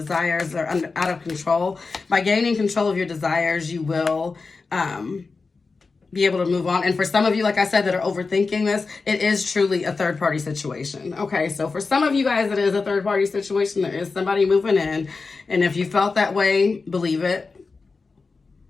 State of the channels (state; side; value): quieter; right; 4.3 dB